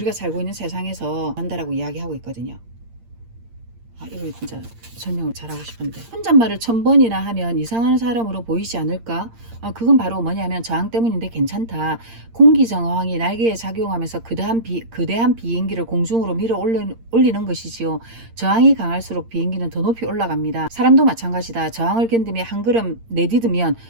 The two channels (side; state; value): left; late; 8.7 ms